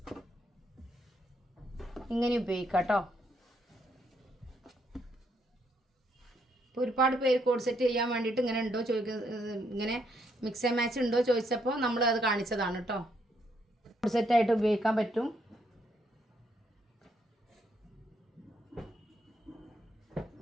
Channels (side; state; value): both; normal; correlation 0.74